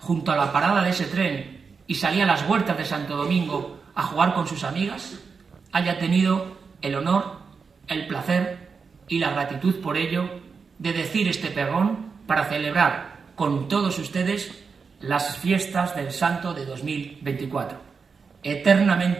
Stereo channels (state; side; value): quieter; left; 5.3 dB